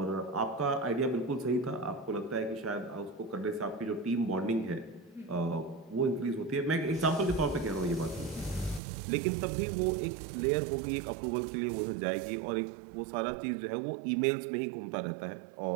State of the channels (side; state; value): left; drops out; at 8.8 s